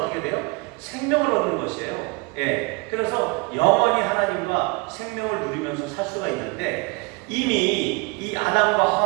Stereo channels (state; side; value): quieter; left; 27.5 dB